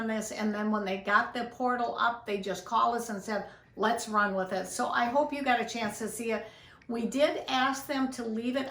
this, and then when they got the portal up, they just called us and said, let's run with it. So I hope you got a chance to see it. We did ask them to leave it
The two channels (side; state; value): both; identical; correlation 1.00